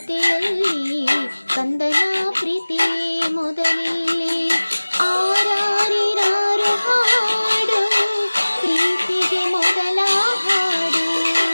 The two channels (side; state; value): both; inverted; correlation -1.00